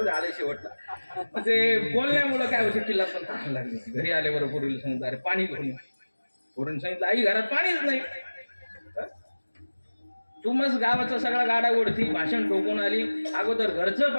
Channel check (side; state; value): both; inverted; correlation -1.00